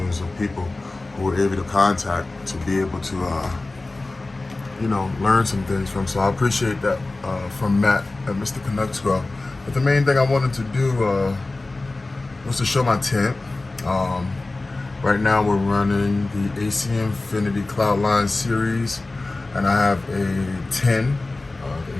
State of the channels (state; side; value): quieter; right; 3.1 dB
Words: of people who were able to contact to be able to, learn some things from. So I appreciate that from Matt at Mr. Canucks Grill. But the main thing I wanted to do was to show my tent. Right now we're running the AC Infinity Cloudline series, and I have a 10, the